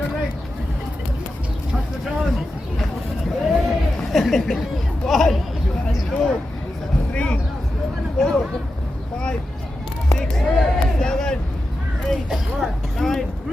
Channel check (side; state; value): both; normal; correlation 0.90